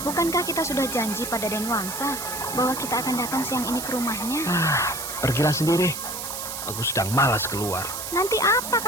Bukankah kita sudah janji pada Den Wangsa bahwa kita akan datang siang ini ke rumahnya? Pergilah sendiri. Aku sedang malas keluar. Nanti apa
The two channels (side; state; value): right; noise; hiss, 6 dB below the sound